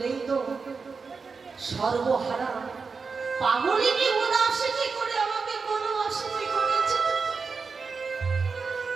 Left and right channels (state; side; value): quieter; left; 4.9 dB